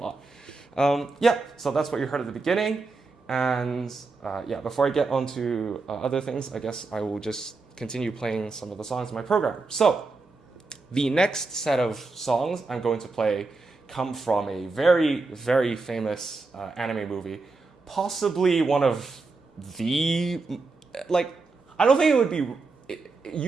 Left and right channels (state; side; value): quieter; left; 3.9 dB